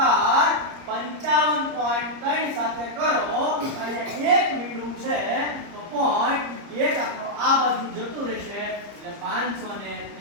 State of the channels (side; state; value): left; late; 30 ms